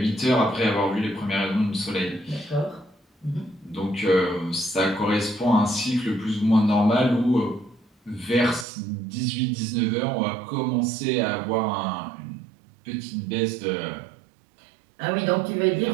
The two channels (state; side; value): drops out; left; at 8.7 s